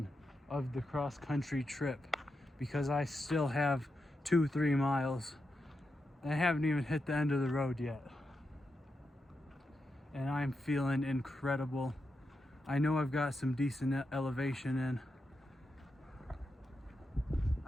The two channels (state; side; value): normal; both; correlation 0.87